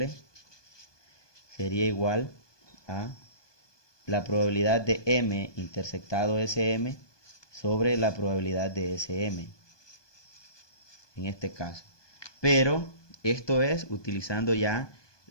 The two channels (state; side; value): late; right; 1.2 ms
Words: sería igual a la probabilidad de M intersectado SM sobre la probabilidad de SM, en este caso. Pero esto es utilizando ya